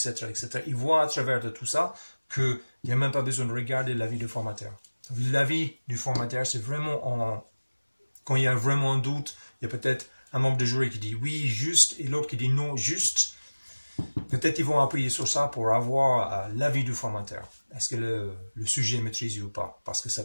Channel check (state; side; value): inverted; both; correlation -1.00